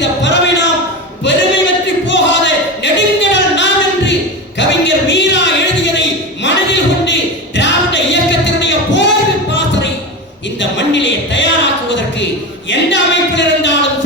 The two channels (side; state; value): both; normal; correlation 0.23